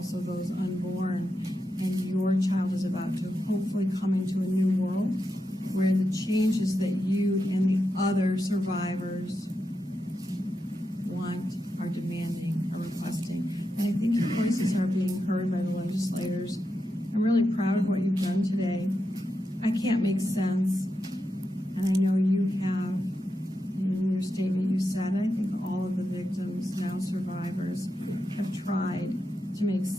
those unborn. And your child is about to hopefully come into a new world where the changes that you and the other survivors want, are demanding, are requesting. And I think your voices are being heard by the legislators. I'm really proud of what you've done today. I can't make sense, and I know you have. In your statement you said, I think all of the victims, now survivors, have tried to make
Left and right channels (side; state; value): both; normal; correlation 0.87